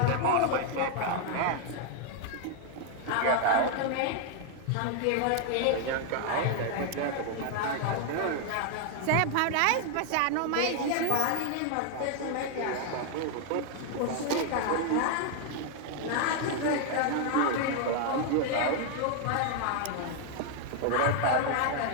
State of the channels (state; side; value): different; both; correlation 0.00